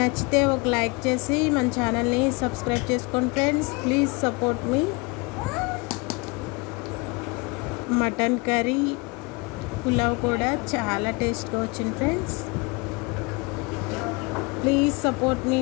ఒక లైక్ చేసి మన ఛానల్ని సబ్స్క్రైబ్ చేసుకోండి friends. Please support me. Mutton curry, pulao కూడా చాలా టేస్ట్గా వచ్చింది friends. Please support me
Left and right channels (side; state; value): right; quieter; 27.9 dB